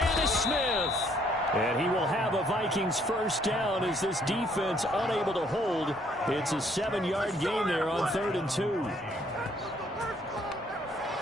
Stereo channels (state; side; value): normal; both; correlation 0.66